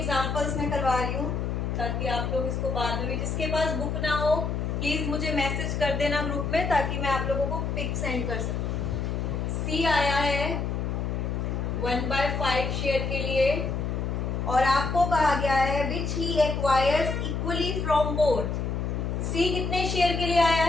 मैं करवा रही हूँ ताकि आप लोग इसको बाद में भी, जिसके पास बुक ना हो प्लीज मुझे मैसेज कर देना ग्रुप में ताकि मैं आप लोगों को पिक सेंड कर सकूं। सी आया है 1/5 शेयर के लिए और आपको कहा गया है विच ही एक्वायर्स इक्वली फ्रॉम बोथ। सी कितने शेयर के लिए आया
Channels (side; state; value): left; noise; hum, 1 dB below the sound